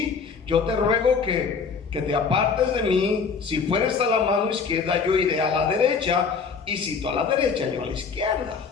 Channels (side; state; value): right; quieter; 5.5 dB